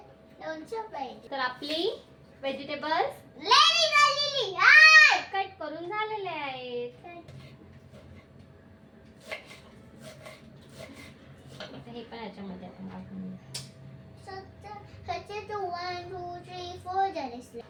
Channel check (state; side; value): identical; both; correlation 1.00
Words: लोणचं पाहिजे. तर आपली व्हेजिटेबल्स रेडी झालेली आहे. कट करून झालेले आहेत. आता हे पण याच्यामध्ये आपण टाकून घेऊ. ह्याचे तो 1 2 3 4 झाले.